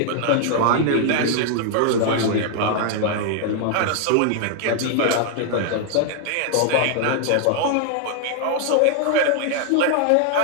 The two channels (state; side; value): different; both; correlation 0.00